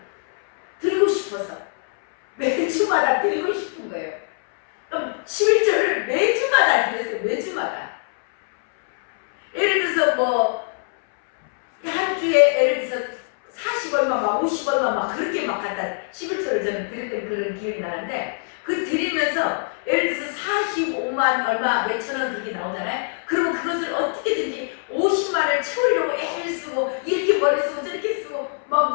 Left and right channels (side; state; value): right; silent; 64 dB below the other